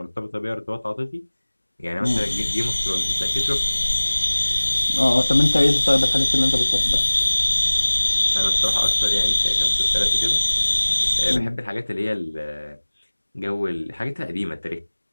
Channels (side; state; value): both; inverted; correlation -1.00